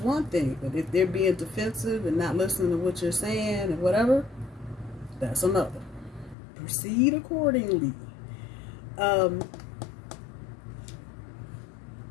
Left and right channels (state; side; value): drops out; right; at 6.4 s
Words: thing. But if they're being defensive and not listening to what you're saying and whatever, that's another. Proceed accordingly.